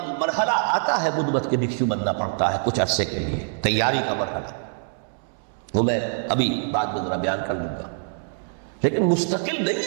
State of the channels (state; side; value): silent; left; 62 dB below the other